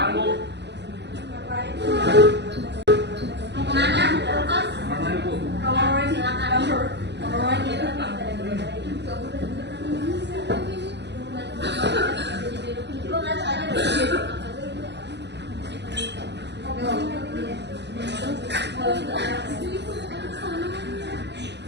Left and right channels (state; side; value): late; left; 0.50 ms